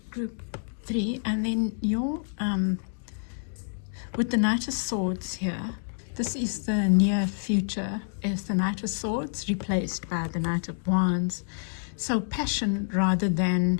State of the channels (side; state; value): right; silent; digital silence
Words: Group 3, and then your with the Knight of Swords here, this is the near future, is the Knight of Swords replaced by the Knight of Wands. So passion rather than